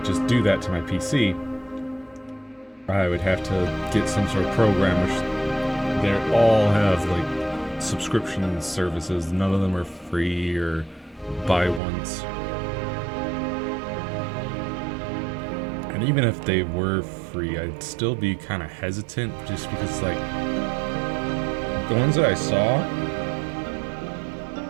just do that to my PC. I would have to get some sort of program, which they all have like subscription services. None of them are free or buy once. And even if they were free, I'd still be kind of hesitant, just because like the ones that I saw,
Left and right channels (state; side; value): drops out; left; at 11.8 s